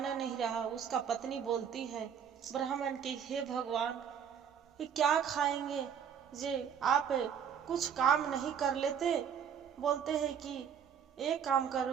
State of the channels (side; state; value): left; quieter; 7.9 dB